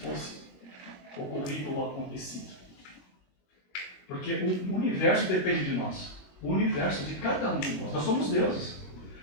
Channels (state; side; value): late; right; 21 ms